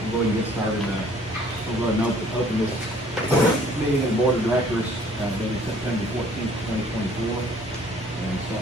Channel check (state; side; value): normal; both; correlation 0.57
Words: We'll go ahead and get started. We'll go ahead and open this meeting of the Board of Directors, dated September 14th, 2024. And start